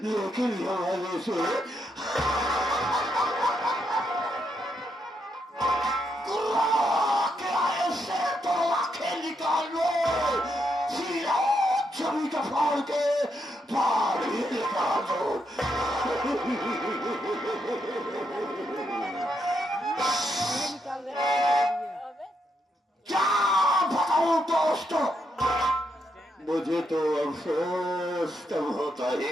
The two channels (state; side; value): normal; both; correlation 0.80